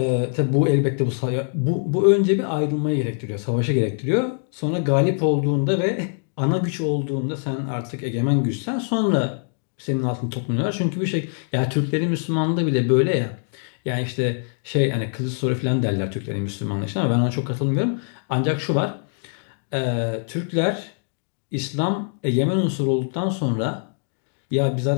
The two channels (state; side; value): silent; right; 63 dB below the other